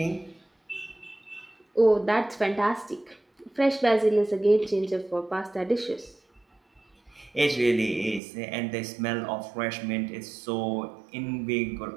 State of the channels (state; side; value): drops out; left; at 8.2 s